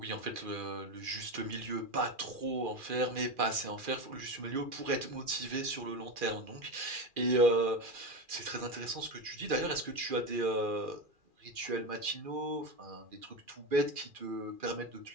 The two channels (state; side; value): late; left; 2.4 ms